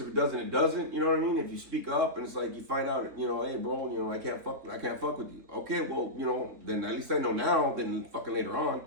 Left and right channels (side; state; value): left; late; 3.6 ms